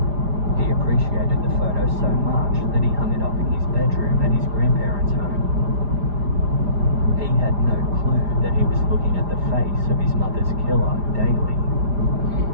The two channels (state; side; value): late; left; 4.9 ms